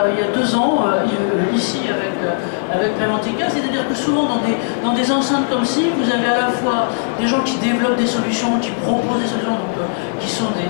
2 ans, ici avec Préventica, c'est-à-dire que souvent dans des enceintes comme ci, vous avez à la fois des gens qui développent des solutions, qui proposent des solutions, donc, qui sont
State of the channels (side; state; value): right; silent; 66 dB below the other